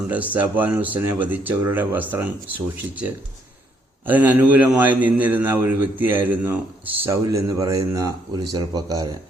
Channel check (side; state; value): both; normal; correlation 0.70